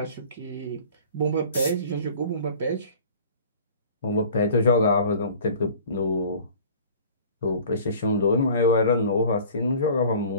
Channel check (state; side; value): inverted; both; correlation -0.46